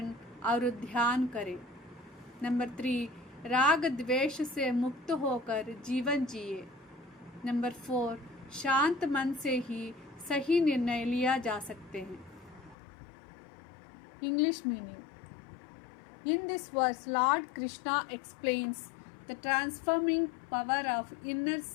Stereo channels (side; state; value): right; drops out; at 12.8 s